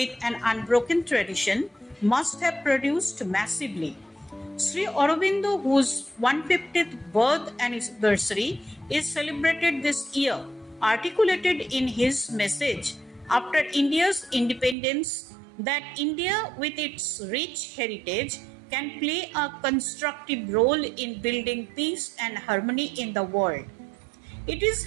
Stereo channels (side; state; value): left; drops out; at 14.8 s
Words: an unbroken tradition must have produced massively. Sri Aurobindo, whose 150th birth anniversary is celebrated this year, articulated in his message after India's independence that India, with its rich heritage, can play a constructive role in building peace and harmony in the world. It is